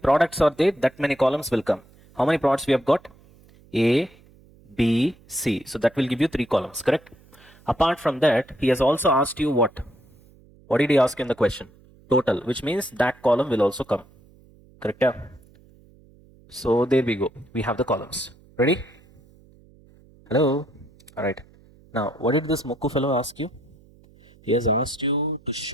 are there? That many columns will come. How many products we have got? A, B, C. So that will give you 3 columns, correct? Apart from that, he has also asked you what? What did he ask in the question? Total, which means that column will also come, correct? So there we go. We have the columns. Ready? Hello? All right. Now, what did this Moku fellow ask you? He has asked you to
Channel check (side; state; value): right; noise; hum, 27 dB below the sound